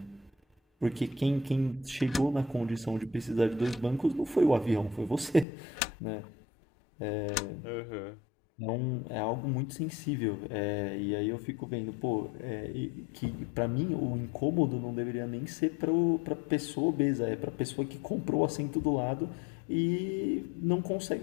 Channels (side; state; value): right; drops out; at 5.5 s